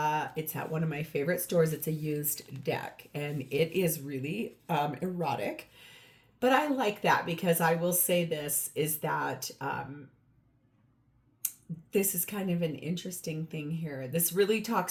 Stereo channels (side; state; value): both; identical; correlation 1.00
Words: at one of my favorite stores. It's a used deck, and it is really erotic. But I like that because I will say this is that this is kind of an interesting thing here. This really